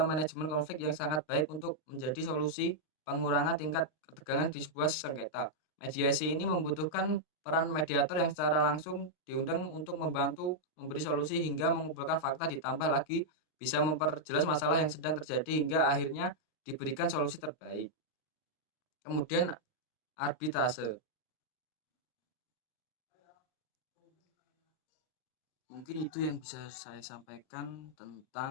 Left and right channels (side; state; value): right; late; 39 ms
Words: manajemen konflik yang sangat baik untuk menjadi solusi pengurangan tingkat ketegangan di sebuah sengketa. Mediasi ini membutuhkan peran mediator yang secara langsung diundang untuk membantu memberi solusi hingga mengumpulkan fakta, ditambah lagi bisa memperjelas masalah yang sedang terjadi hingga akhirnya diberikan solusi terbaik. Kemudian arbitrase. Mungkin itu yang bisa saya sampaikan